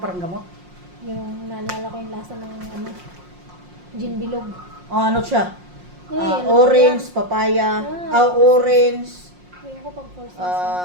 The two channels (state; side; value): late; left; 5.6 ms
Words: parang gamot. Yung naalala ko yung lasa ng ano, gin bilog. Oh, ano siya? Ano Orange, yan? papaya, Ah, orange, Ayun ko pag first